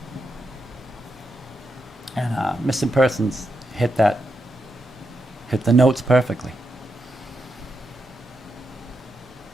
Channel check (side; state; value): both; normal; correlation 0.85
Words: And Missing Persons hit the notes perfectly.